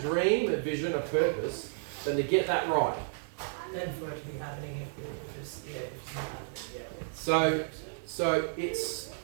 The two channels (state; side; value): silent; left; 56 dB below the other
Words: a vision, a purpose, than to get that right. Then for it to be happening, if it's not happening, So it's,